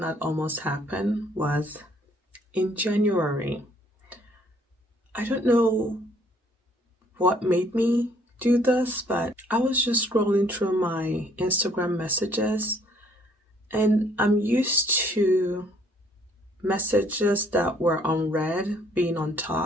almost happen was in January. I don't know what made me do this, but I was just scrolling through my Instagram messages, and I'm used to messages that were unread being on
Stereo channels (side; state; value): both; normal; correlation 0.64